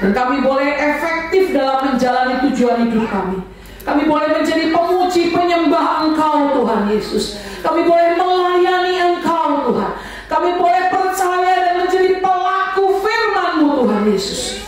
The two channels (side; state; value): both; identical; correlation 1.00